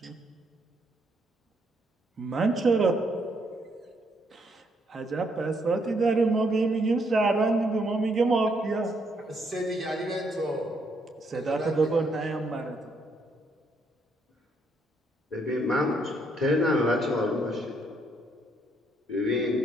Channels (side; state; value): both; normal; correlation 0.72